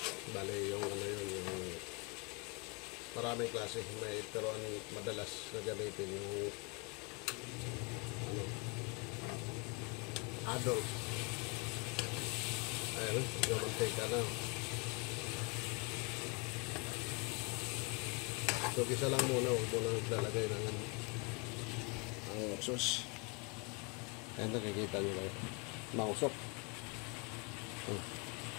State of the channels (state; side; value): quieter; right; 30.0 dB